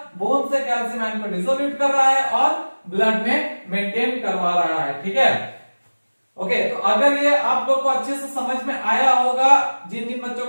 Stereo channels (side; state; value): both; inverted; correlation -1.00